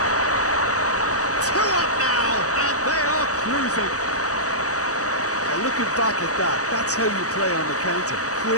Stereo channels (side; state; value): right; late; 0.66 ms